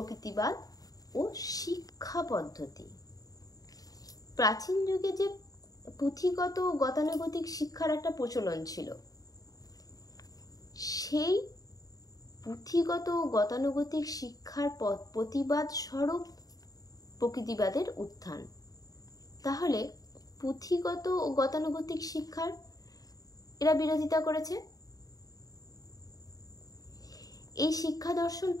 ও শিক্ষা পদ্ধতি। প্রাচীন যুগে যে পুঁথিগত ও গতানুগতিক শিক্ষার একটা প্রচলন ছিল, সেই পুঁথিগত ও গতানুগতিক শিক্ষার প্রতিবাদ স্বরূপ প্রকৃতিবাদের উত্থান। তাহলে পুঁথিগত ও গতানুগতিক শিক্ষার এরা বিরোধিতা করেছে। এই শিক্ষা দর্শন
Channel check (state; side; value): late; right; 0.18 ms